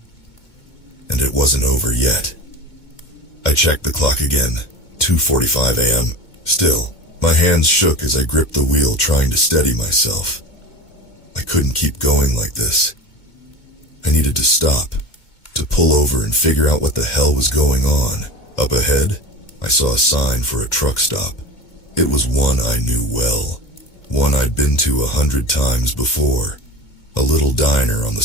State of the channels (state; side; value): late; right; 2.2 ms